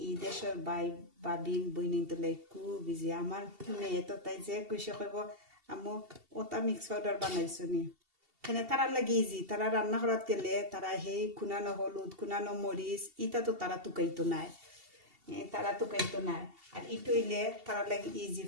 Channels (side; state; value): left; late; 2.7 ms